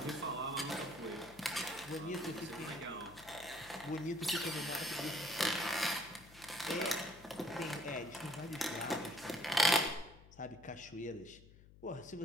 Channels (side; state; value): left; noise; hum, 21 dB below the sound